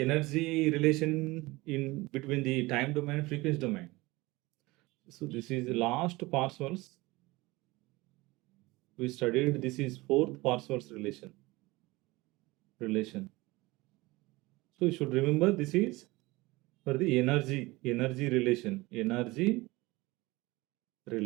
relation in between the time domain and frequency domain. So this is the last partials we studied. This is fourth partials relation. So you should remember this is for the energy relation.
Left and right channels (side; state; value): left; quieter; 21.5 dB